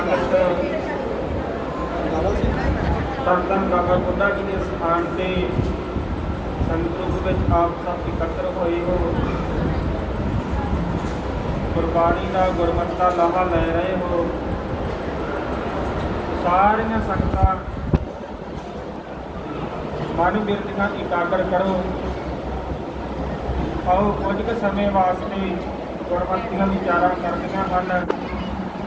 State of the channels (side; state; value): both; identical; correlation 1.00